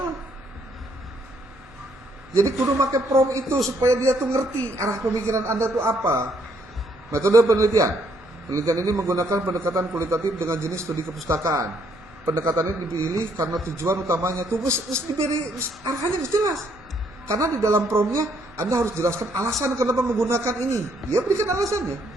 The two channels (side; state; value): both; normal; correlation 0.70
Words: Jadi kudu pakai prom itu supaya dia tuh ngerti arah pemikiran Anda tuh apa. Metode penelitian. Penelitian ini menggunakan pendekatan kualitatif dengan jenis studi kepustakaan. Pendekatan ini dipilih karena tujuan utamanya tuh diberi arahannya jelas. Karena di dalam promnya Anda harus jelaskan alasan kenapa menggunakan ini. Dia berikan alasannya.